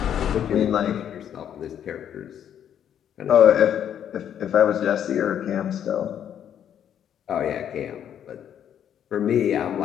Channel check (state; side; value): quieter; right; 9.5 dB